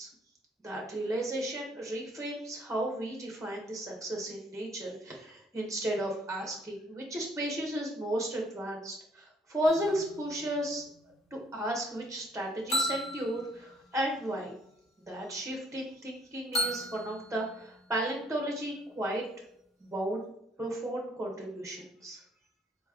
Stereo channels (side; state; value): both; normal; correlation 0.63